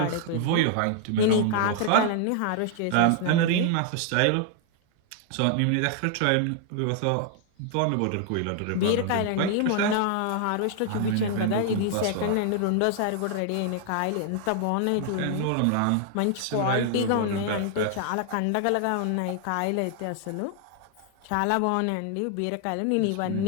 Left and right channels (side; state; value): both; different; correlation 0.00